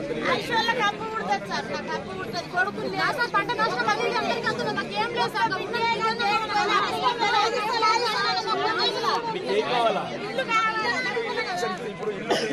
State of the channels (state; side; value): identical; both; correlation 1.00